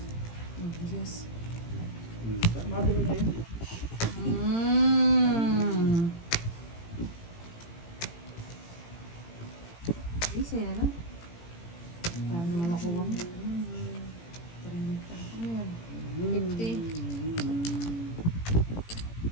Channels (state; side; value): late; right; 18 ms